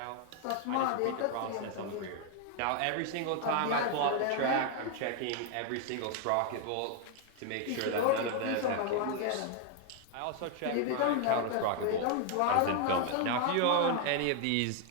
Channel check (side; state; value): both; different; correlation 0.00